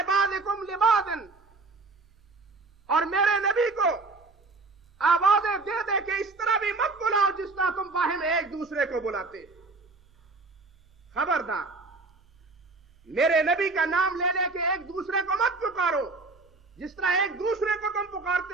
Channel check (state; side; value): quieter; left; 3.6 dB